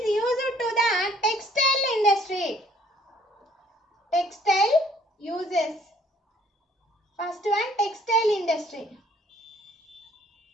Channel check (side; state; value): both; normal; correlation 0.60